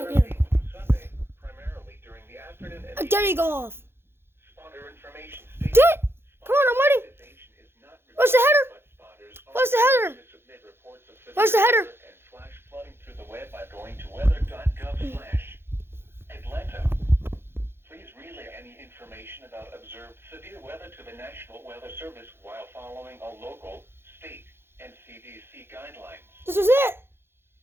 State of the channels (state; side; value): late; left; 0.11 ms